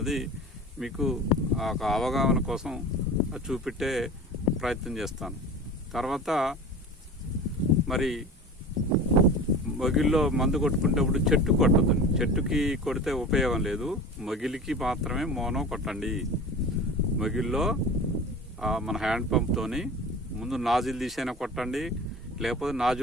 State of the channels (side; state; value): both; normal; correlation 0.35